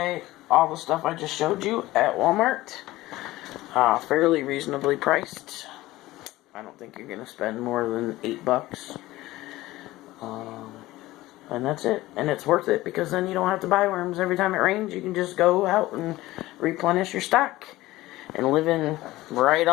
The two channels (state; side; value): quieter; right; 17.6 dB